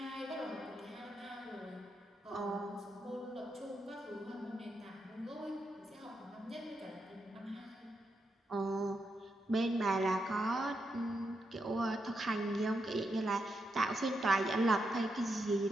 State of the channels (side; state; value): both; normal; correlation 0.83